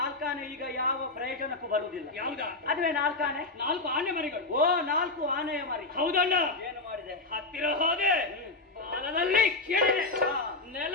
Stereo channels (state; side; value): quieter; right; 3.2 dB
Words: ಈಗ ಯಾವ ಪ್ರಯೋಜನಕ್ಕೂ ಬರುವುದಿಲ್ಲ. ಯಾವುದಾ? ಅದುವೇ ನಾಲ್ಕಾಣೆ. 4 ಆನೆ ಮರಿಗಳು. ಓ, 4 ಆನೆಯ ಮರಿ. ಹೌದಣ್ಣ. ಏನು ಮಾಡಿದೆ? ಹತ್ತಿರ ಹೋದೆ, ಬಾಲದಲ್ಲಿ ಕೇಳಿದೆ,